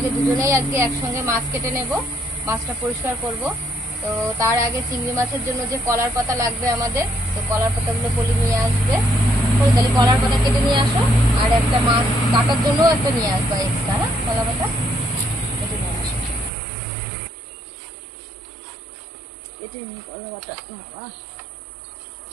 দুজনেই আজকে একসঙ্গে মাছ কেটে নেব, মাছটা পরিষ্কার করব। তো তার আগে চিংড়ি মাছের জন্য যে কলার পাতা লাগবে আমাদের, তো কলার পাতাগুলো পলি নিয়ে আসবে। তাহলে কলার পাতা কেটে নিয়ে আসো, আর একটা মাছ কাটার জন্য একটা নিয়ে আসবা এক্সট্রা। হ্যাঁ, কলা পাতা কেটে নিয়ে আসো। কেটে নিই কলা পাতা। বাবা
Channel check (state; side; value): drops out; left; at 16.5 s